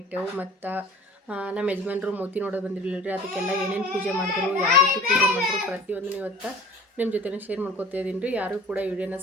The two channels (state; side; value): normal; both; correlation 0.43